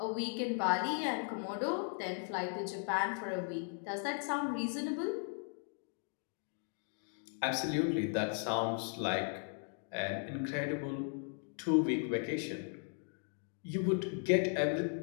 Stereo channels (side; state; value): right; silent; 53 dB below the other